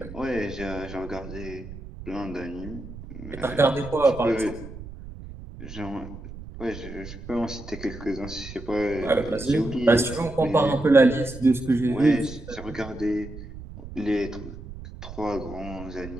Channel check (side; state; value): right; noise; rumble, 13 dB below the sound